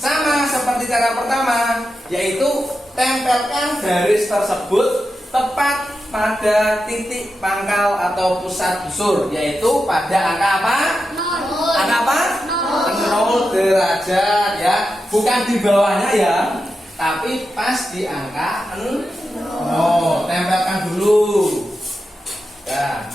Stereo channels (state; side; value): normal; both; correlation 0.89